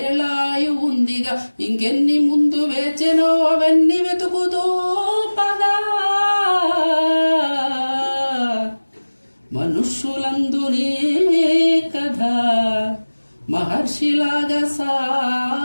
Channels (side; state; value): both; inverted; correlation -1.00